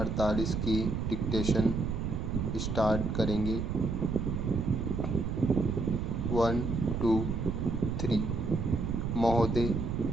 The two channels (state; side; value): noise; right; rumble, 2 dB below the sound